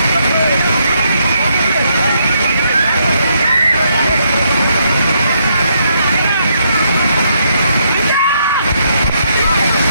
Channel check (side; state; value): both; inverted; correlation -0.75